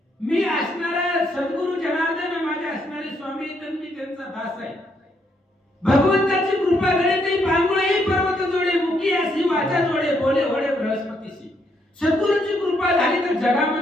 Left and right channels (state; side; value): normal; both; correlation 0.74